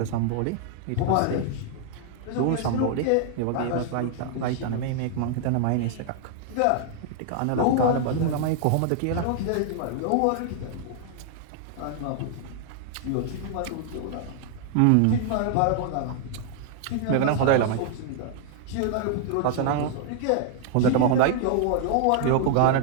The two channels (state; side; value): different; both; correlation 0.00